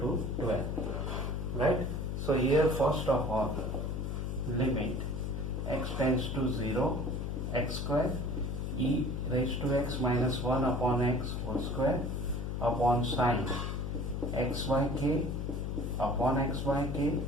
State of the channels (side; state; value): left; noise; hum, 2 dB below the sound